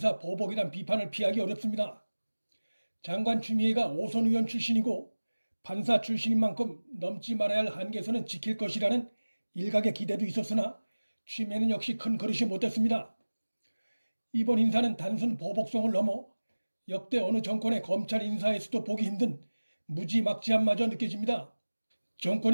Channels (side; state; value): both; inverted; correlation -1.00